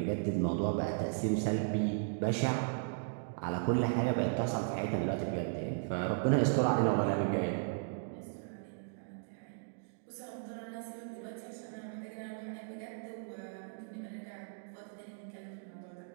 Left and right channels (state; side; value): silent; left; digital silence